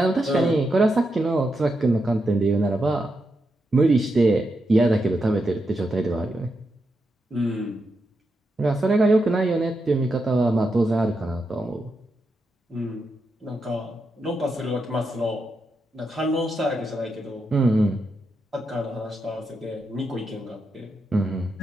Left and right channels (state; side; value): normal; both; correlation 0.85